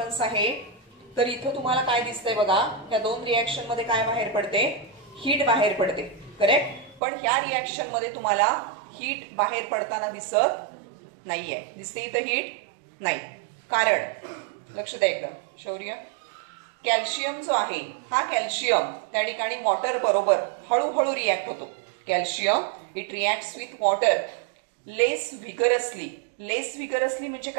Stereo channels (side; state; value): left; drops out; at 7.0 s